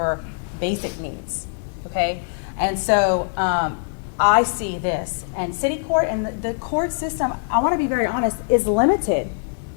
basic needs, okay? And so I see this, and city court and the court system, I want to be very honest, is limited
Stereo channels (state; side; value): silent; right; digital silence